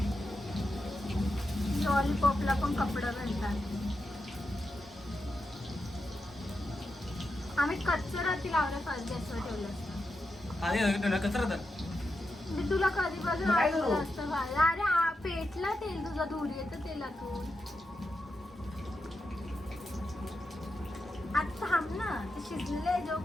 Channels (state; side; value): normal; both; correlation 0.87